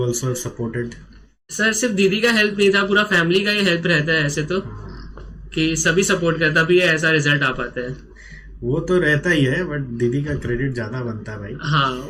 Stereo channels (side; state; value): both; identical; correlation 1.00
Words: also supported. Sir सिर्फ दीदी का हेल्प नहीं था, पूरा फैमिली का ही हेल्प रहता है ऐसे तो, कि सभी सपोर्ट करता भी ऐसा रिजल्ट आ पाता है। वो तो रहता ही है, बट दीदी का क्रेडिट ज्यादा बनता है भाई। हाँ